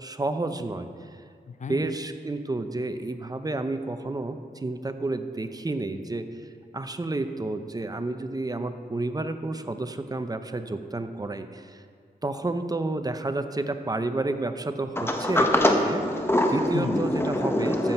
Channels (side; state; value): both; normal; correlation 0.75